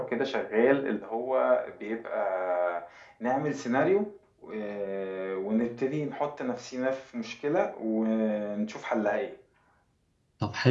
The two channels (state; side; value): identical; both; correlation 1.00